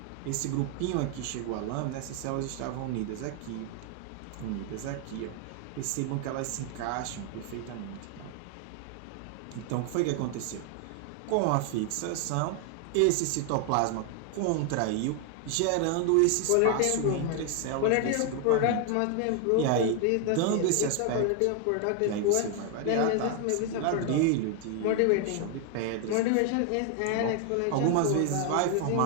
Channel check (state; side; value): different; both; correlation 0.00